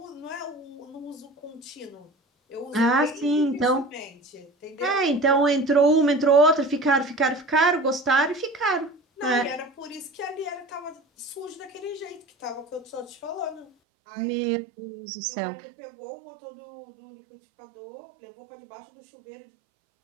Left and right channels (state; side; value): drops out; left; at 13.7 s